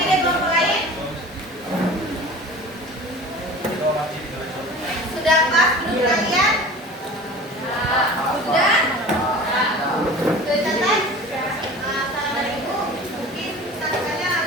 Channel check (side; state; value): both; normal; correlation 0.39